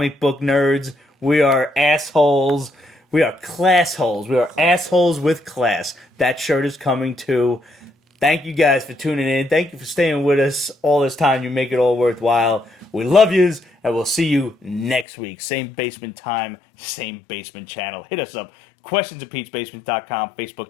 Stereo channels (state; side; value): drops out; right; at 15.1 s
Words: book nerds. We are assholes. We are class holes. We are assholes with class. That shirt is coming too. Thank you guys for tuning in. Thank you for staying with us all this time. You make it all worthwhile. We love yous, and we'll see you next week. Same basement time, same basement channel. Hit us up. Questions at Pete'sBasement.com,